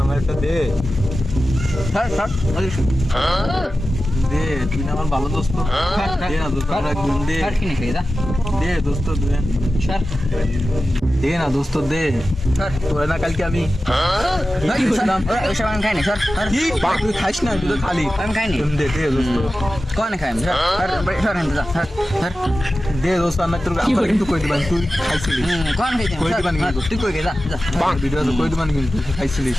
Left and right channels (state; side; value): normal; both; correlation 0.94